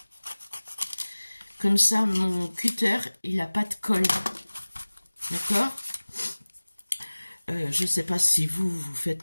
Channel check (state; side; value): inverted; both; correlation -1.00